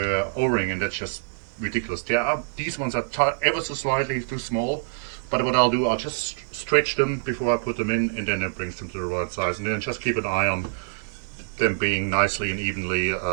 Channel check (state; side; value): silent; left; digital silence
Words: O-ring, and that's just ridiculous. These ones are ever so slightly too small, but what I'll do, I'll just stretch them before I put them in, and then it brings them to the right size, and then just keep an eye on them being nicely and evenly